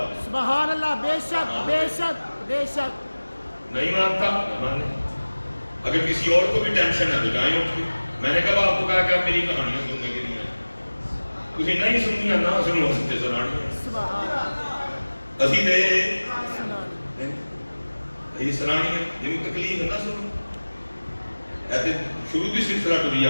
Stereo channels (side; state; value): both; inverted; correlation -1.00